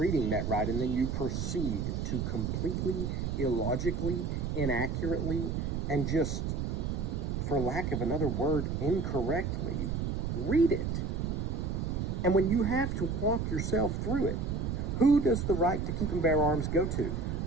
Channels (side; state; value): right; noise; rumble, 1 dB below the sound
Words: that right, and then you proceed to completely illogically, inaccurately, and just, for lack of another word, incorrectly read it. And when you have to walk yourself through it, who does the right to keep and bear arms go to?